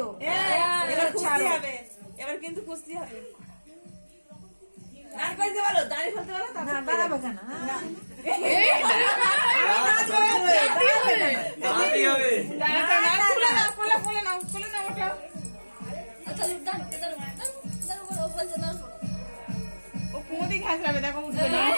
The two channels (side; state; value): both; inverted; correlation -1.00